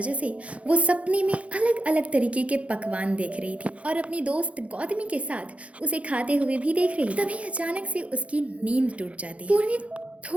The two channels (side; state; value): left; late; 0.063 ms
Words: से वो सपने में अलग अलग तरीके के पकवान देख रही थी और अपनी दोस्त गौतमी के साथ उसे खाते हुए भी देख रही थी। तभी अचानक से उसकी नींद टूट जाती है। पूर्वी